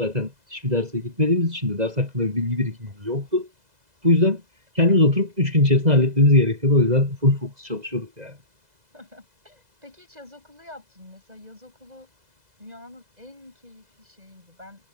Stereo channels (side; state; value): left; late; 2.0 ms